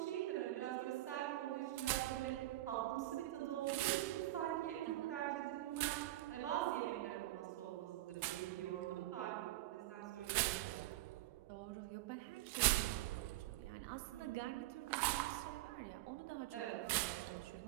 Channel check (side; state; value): left; quieter; 16.2 dB